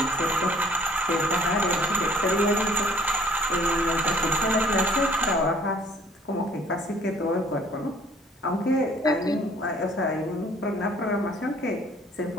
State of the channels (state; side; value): normal; both; correlation 0.56